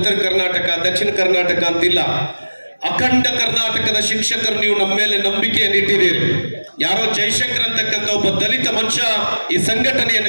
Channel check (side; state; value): both; inverted; correlation -1.00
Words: ಕರ್ನಾಟಕ, ದಕ್ಷಿಣ ಕರ್ನಾಟಕ ಅಂತಿಲ್ಲ, ಅಖಂಡ ಕರ್ನಾಟಕದ ಶಿಕ್ಷಕರು ನೀವು ನಮ್ಮ ಮೇಲೆ ನಂಬಿಕೆಯನ್ನು ಇಟ್ಟಿದ್ದೀರಿ. ಯಾರೋ ಜೈಶಂಕರ್ ಅಂತಕ್ಕಂಥ ಒಬ್ಬ ದಲಿತ ಮನುಷ್ಯ ಈ